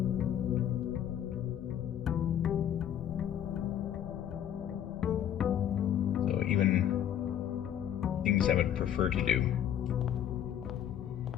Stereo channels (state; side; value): quieter; right; 10.1 dB